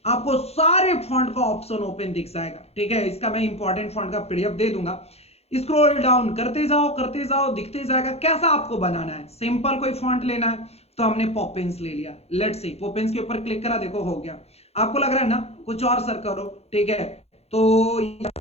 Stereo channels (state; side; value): late; right; 0.30 ms